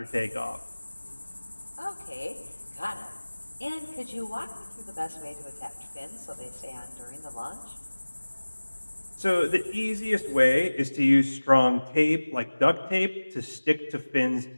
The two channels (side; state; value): both; inverted; correlation -1.00